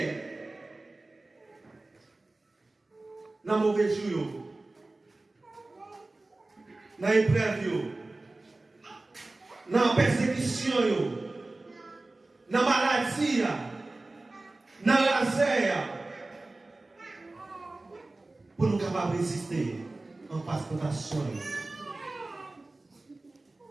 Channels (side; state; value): left; quieter; 3.0 dB